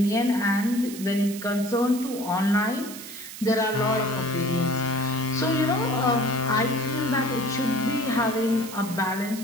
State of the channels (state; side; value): noise; right; hiss, 12 dB below the sound